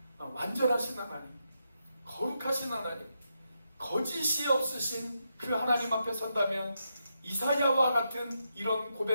완전하신 하나님, 거룩하신 하나님, 거짓이 없으신 그 하나님 앞에 선다면 이사야와 같은 이런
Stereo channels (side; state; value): both; inverted; correlation -0.83